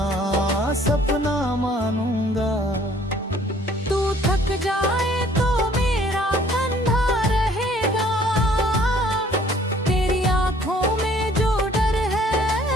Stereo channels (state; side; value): normal; both; correlation 0.58